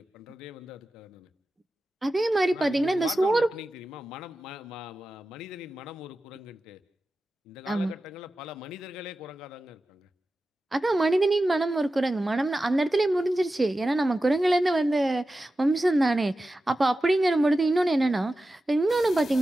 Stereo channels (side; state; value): both; normal; correlation 0.93